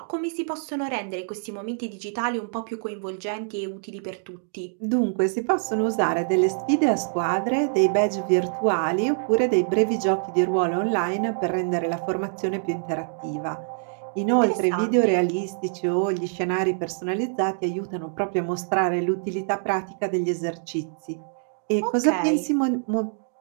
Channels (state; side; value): silent; left; digital silence